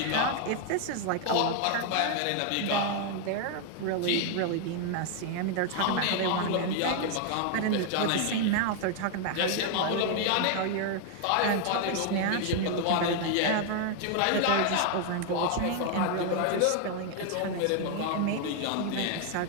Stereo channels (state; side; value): different; both; correlation 0.00